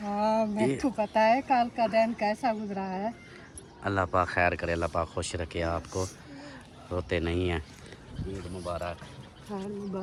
हाँ, मेरे को पता है कल का दिन कैसा गुजरा है। अल्लाह पाक खैर करे, अल्लाह पाक खुश रखे आपको, रोते नहीं हैं। ईद मुबारक।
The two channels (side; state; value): both; identical; correlation 1.00